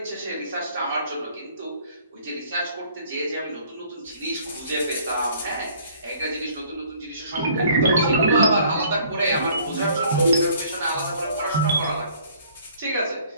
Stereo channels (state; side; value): inverted; both; correlation -0.57